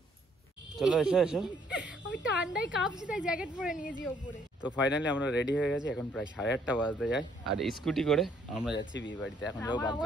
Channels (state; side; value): normal; both; correlation 0.66